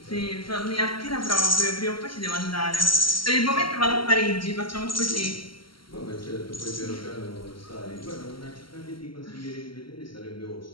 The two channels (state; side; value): late; right; 0.74 ms